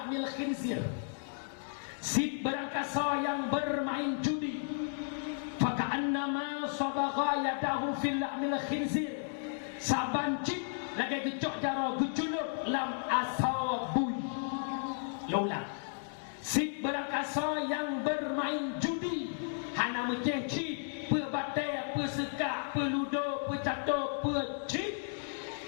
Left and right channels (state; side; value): silent; right; digital silence